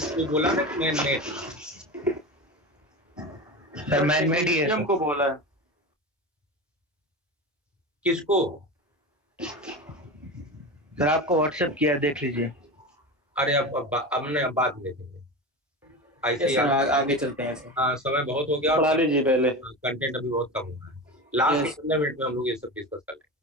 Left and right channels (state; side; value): normal; both; correlation 0.25